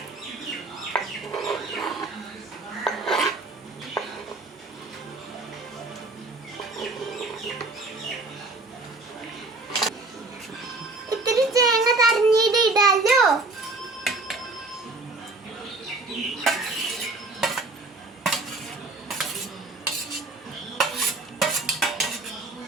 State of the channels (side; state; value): left; quieter; 3.3 dB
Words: ഇത്തിരി തേങ്ങ തരഞ്ഞിട്ട് ഇടാലോ.